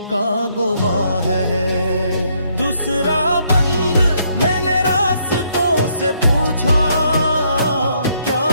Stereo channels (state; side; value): inverted; both; correlation -0.72